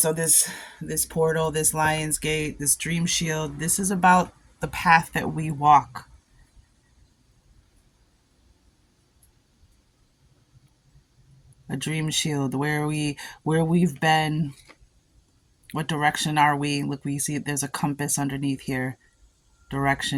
this portal, this Lion's Gate, this Dream Shield, this is about the path that we walk. A dream shield, where we've been, what direction are we? Look, we see there's a compass underneath here.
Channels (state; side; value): identical; both; correlation 1.00